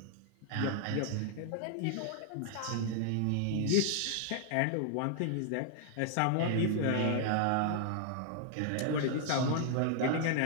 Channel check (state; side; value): different; both; correlation 0.00